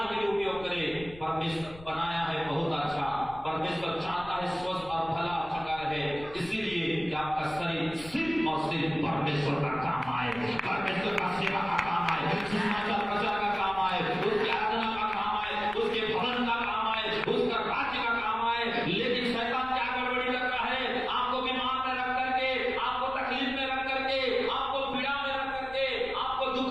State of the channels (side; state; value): left; noise; rumble, 18 dB below the sound